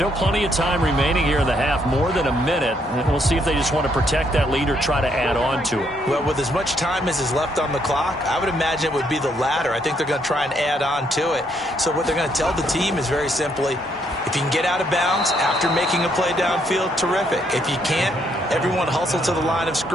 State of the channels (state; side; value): normal; both; correlation 0.72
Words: plenty of time remaining here in the half, more than a minute. And we'll see if they just want to protect that lead or try to add on to it. Well, with as much time as is left on the clock, I would imagine it would be the latter. I think they're going to try and add on to it. So what they're going to tell the team is very simply, if you can get out of bounds after making a play downfield, terrific. If you can't, everyone hustle to the line of